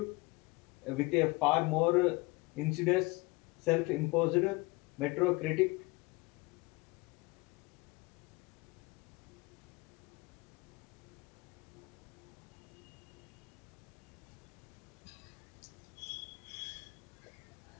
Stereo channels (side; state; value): right; quieter; 23.9 dB